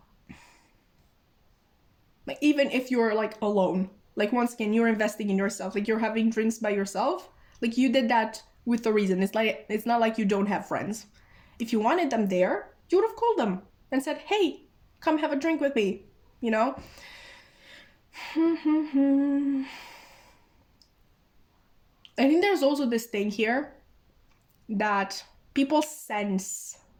Like, even if you're like alone, like, once again, you're investing in yourself. Like, you're having drinks by yourself. Like, you did that with a reason. It's not like you don't have friends. If you wanted them there, you would have called them and said, hey, come have a drink with me, I think there's also this thing here that people sense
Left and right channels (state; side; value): identical; both; correlation 1.00